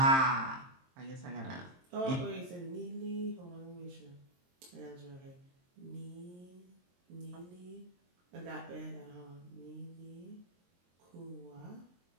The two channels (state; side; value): late; left; 23 ms